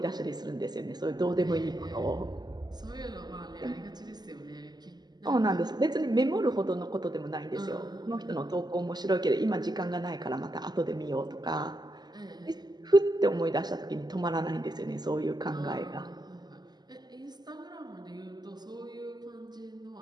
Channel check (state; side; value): late; left; 0.20 ms